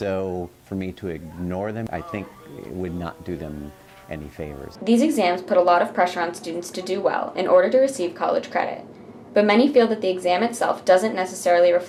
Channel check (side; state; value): both; identical; correlation 1.00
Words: for me to ignore them, I think it would not do them any favors. These exams put a lot of pressure on students to do well in order to receive college credit. But many feel that the exam itself doesn't necessarily